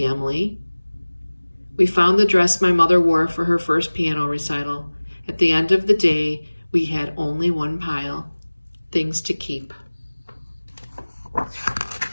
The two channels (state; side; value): inverted; both; correlation -1.00